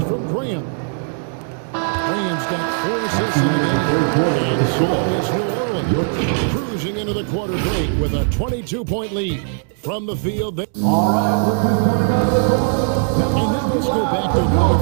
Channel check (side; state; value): left; silent; digital silence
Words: from Graham. Graham's got 4 assists in the game. And so it's New Orleans cruising into the quarter break with a 22-point lead from the field. All right, Ricky's coming out of the court. And now let's go back to a play